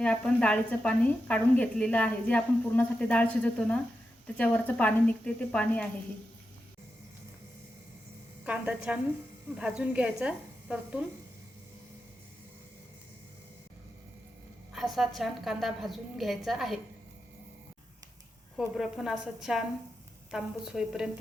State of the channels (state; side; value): normal; both; correlation 0.88